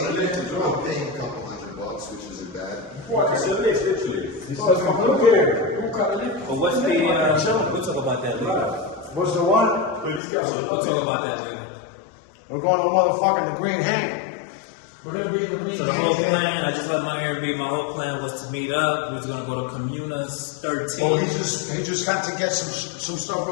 there. I'm paying a couple $100, which isn't bad. But what's the? We'll talk about that later. What's the one? We'll talk about that later. We're going to motherfucking the Green Hang. We're gonna be in the Green So the Hang. whole plan, I just left my Airbnb. My whole plan was to meet up. We was gonna go to Comunas 13. Oh, he just got to get some stuff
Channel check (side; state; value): right; drops out; at 10.2 s